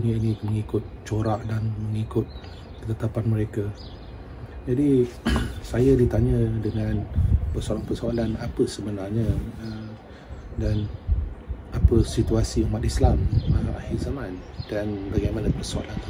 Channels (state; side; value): identical; both; correlation 1.00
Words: ini mengikut corak dan mengikut ketetapan mereka. Jadi saya ditanya dengan persoalan-persoalan apa sebenarnya dan apa situasi umat Islam akhir zaman, dan bagaimana persoalan